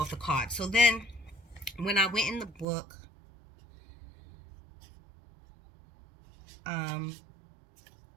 the card. So then when I went in the book, um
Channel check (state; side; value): drops out; left; at 2.7 s